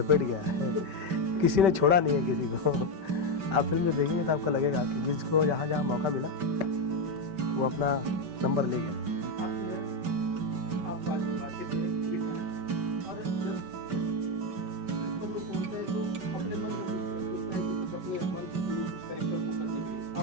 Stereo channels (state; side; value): late; left; 5.2 ms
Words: गया है, किसी ने छोड़ा नहीं है किसी को। आप फिल्म में देखेंगे तो आपको लगेगा कि जिसको जहाँ जहाँ मौका मिला वो अपना नंबर ले गया।